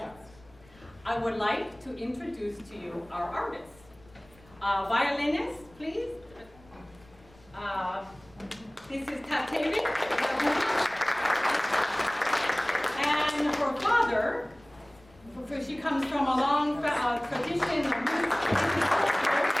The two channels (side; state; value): left; noise; rumble, 27 dB below the sound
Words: I would like to introduce to you our artists. Violinist, please. This is Tatevi. And her father, she comes from a long tradition of music